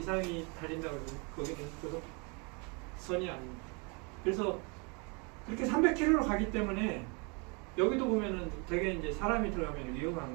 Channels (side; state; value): left; quieter; 32.4 dB